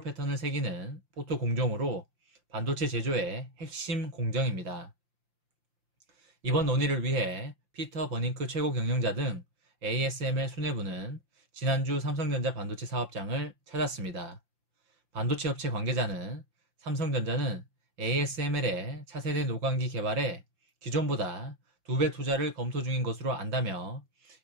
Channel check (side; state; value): left; late; 5.8 ms